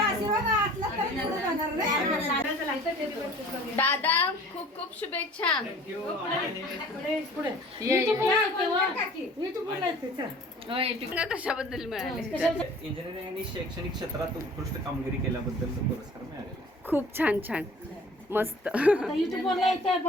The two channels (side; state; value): both; normal; correlation 0.48